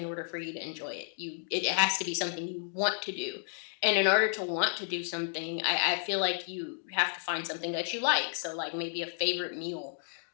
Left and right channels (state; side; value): silent; right; digital silence